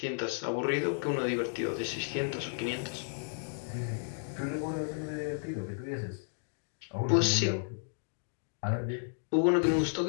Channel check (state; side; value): silent; right; digital silence